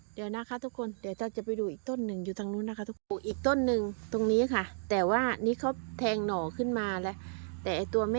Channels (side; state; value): left; silent; digital silence